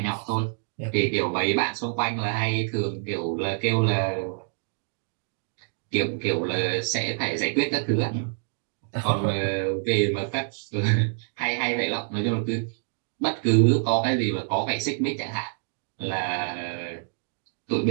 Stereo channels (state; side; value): silent; left; digital silence